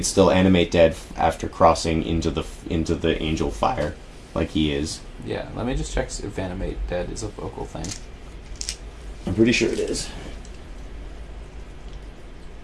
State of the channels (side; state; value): both; identical; correlation 1.00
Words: still animate dead after crossing into the angel fire, like he is. Yeah, let me just check if animate dead is a vocal thing. I'm pretty sure it is.